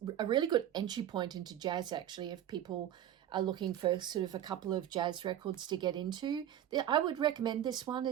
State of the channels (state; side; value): quieter; left; 11.2 dB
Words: a really good entry point into jazz, actually, if people are looking for sort of a couple of jazz records to get into. I would recommend this one.